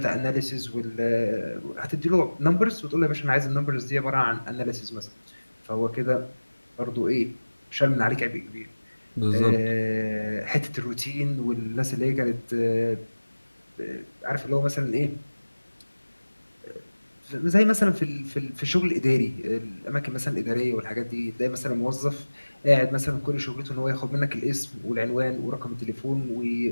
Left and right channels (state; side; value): inverted; both; correlation -1.00